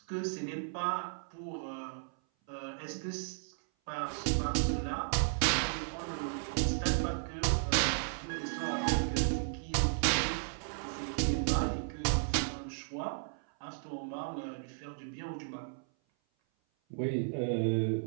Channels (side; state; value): left; silent; 55 dB below the other